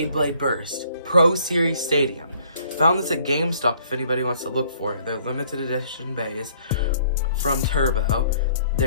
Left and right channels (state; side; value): inverted; both; correlation -0.60